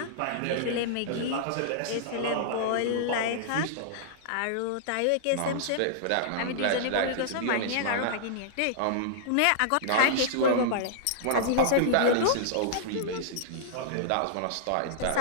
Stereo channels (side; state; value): both; different; correlation -0.02